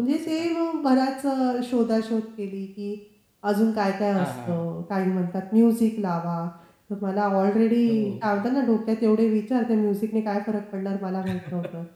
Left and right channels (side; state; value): both; identical; correlation 1.00